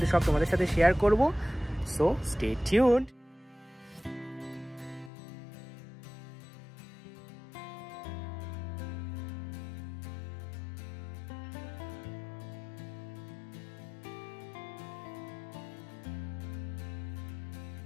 সব তোমাদের সাথে শেয়ার করব। So stay tuned.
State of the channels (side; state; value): right; drops out; at 5.1 s